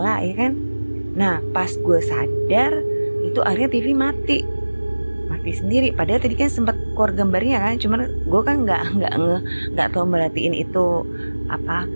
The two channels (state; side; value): inverted; both; correlation -1.00